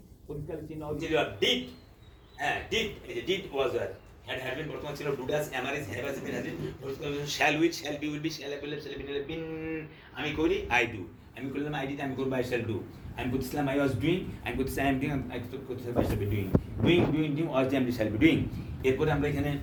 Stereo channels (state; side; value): identical; both; correlation 1.00